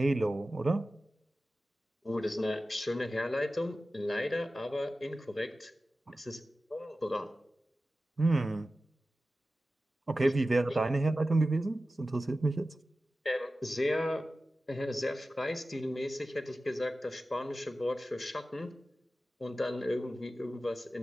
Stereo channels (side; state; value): both; normal; correlation 0.94